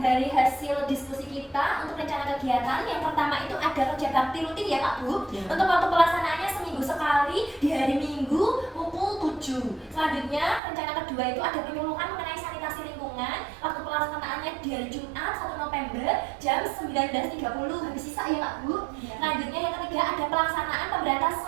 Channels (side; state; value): left; drops out; at 10.6 s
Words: dari hasil diskusi kita untuk rencana kegiatan. Yang pertama itu ada kerja bakti rutin ya Pak Bu. Untuk waktu pelaksanaannya seminggu sekali di hari Minggu pukul 7. Selanjutnya rencana kedua itu ada penyuluhan mengenai sanitasi lingkungan. Waktu pelaksanaannya di hari Jumat 1 November jam 19.30. Habis sisa ya Pak Bu. Selanjutnya yang ketiga ada pelaksanaan pemberantasan